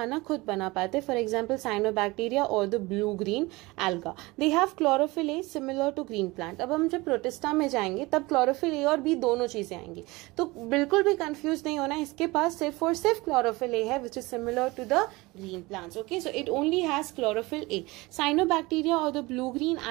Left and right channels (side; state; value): left; quieter; 22.3 dB